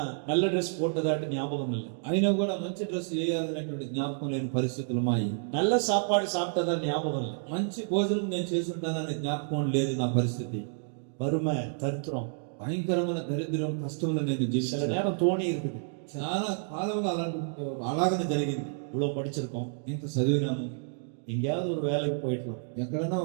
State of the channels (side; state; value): left; silent; digital silence